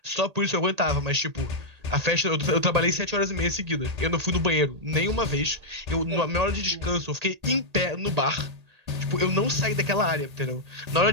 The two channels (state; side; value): late; left; 1.8 ms